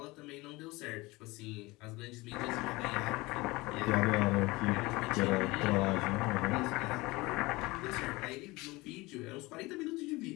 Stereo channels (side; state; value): right; quieter; 22.1 dB